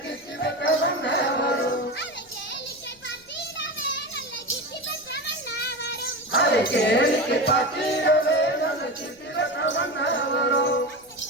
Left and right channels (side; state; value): left; noise; rumble, 30 dB below the sound